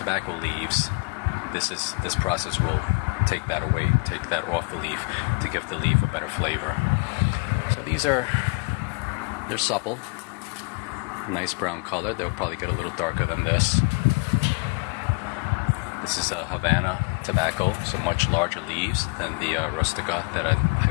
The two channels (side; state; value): right; quieter; 31.1 dB